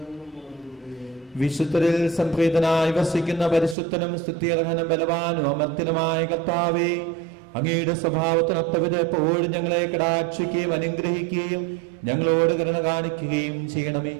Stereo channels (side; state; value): left; drops out; at 3.8 s